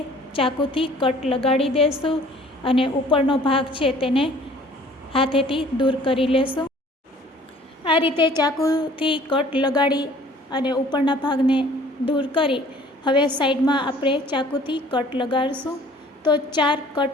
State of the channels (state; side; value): normal; both; correlation 0.52